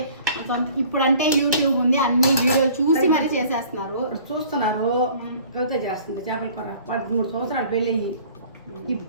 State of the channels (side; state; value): both; inverted; correlation -0.51